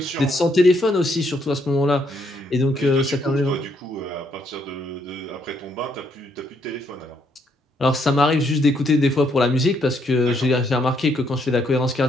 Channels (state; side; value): normal; both; correlation 0.72